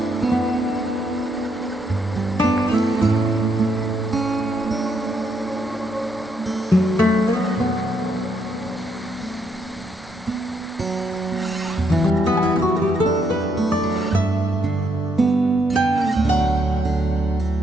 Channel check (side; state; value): both; normal; correlation 0.75